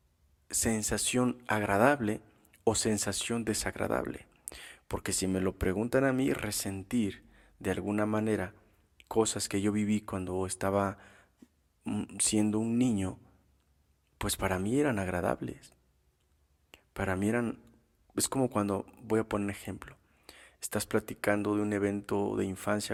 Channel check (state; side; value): identical; both; correlation 1.00